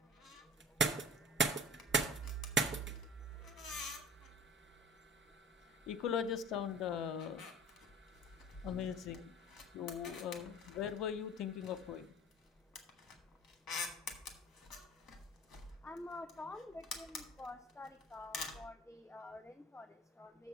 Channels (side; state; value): both; normal; correlation 0.41